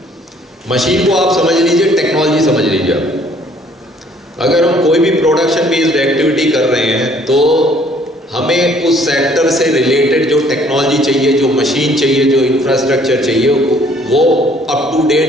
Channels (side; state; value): both; normal; correlation 0.60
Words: मशीन को आप समझ लीजिए, टेक्नोलॉजी समझ लीजिए। अगर हम कोई भी प्रोडक्शन बेस्ड एक्टिविटी कर रहे हैं तो हमें उस सेक्टर से रिलेटेड जो टेक्नोलॉजी चाहिए, जो मशीन चाहिए, जो इंफ्रास्ट्रक्चर चाहिए, वो अप टू